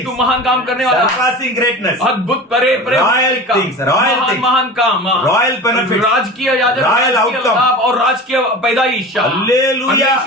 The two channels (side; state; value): both; normal; correlation 0.33